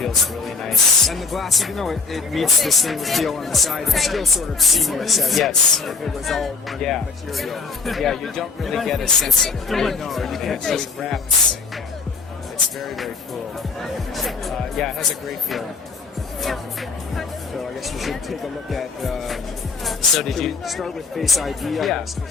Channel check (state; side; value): quieter; right; 4.5 dB